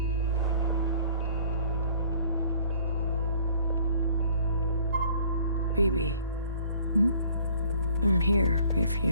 BB. Hmm? I'm here if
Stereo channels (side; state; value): both; inverted; correlation -0.55